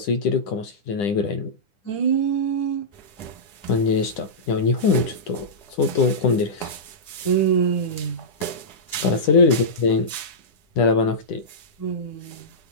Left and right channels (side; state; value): right; late; 10 ms